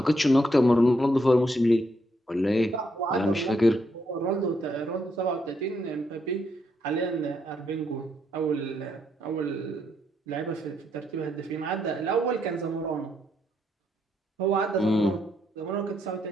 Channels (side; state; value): both; normal; correlation 0.76